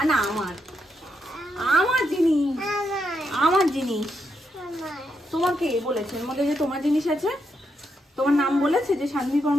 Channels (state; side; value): normal; both; correlation 0.81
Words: না আমার, আমার জিনিস, আমার জিনিস। তোমাকে বলেছে এর মধ্যে যে তোমার জিনিস আছে? তোমার নাম বলেছে যে শান্তি